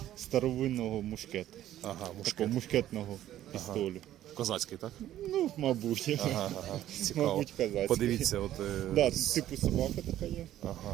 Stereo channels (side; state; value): left; quieter; 12.7 dB